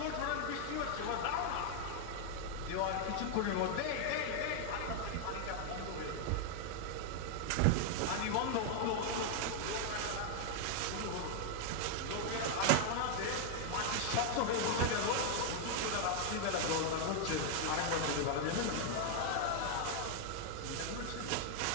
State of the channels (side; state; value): both; different; correlation 0.00